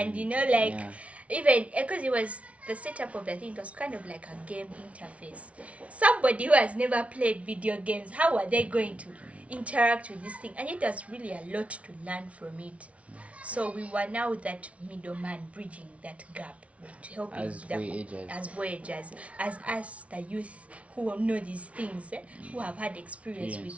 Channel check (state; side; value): late; left; 0.064 ms